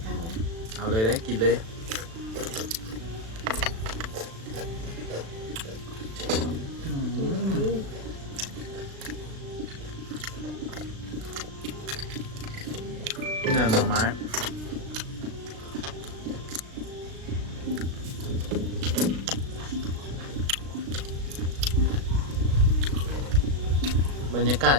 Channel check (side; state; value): left; late; 36 ms